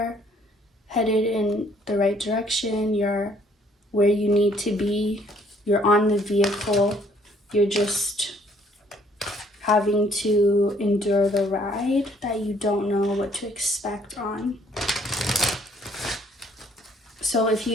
headed in the right direction. You're where you need to be. You're on the vehicle. You're just having to endure the ride that you don't know what to expect on. So if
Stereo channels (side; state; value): both; normal; correlation 0.63